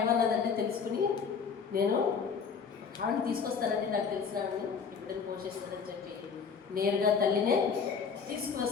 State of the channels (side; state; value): right; quieter; 6.0 dB